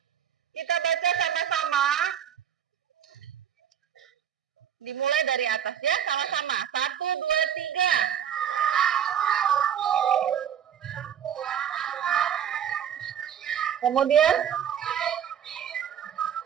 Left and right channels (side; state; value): left; quieter; 8.9 dB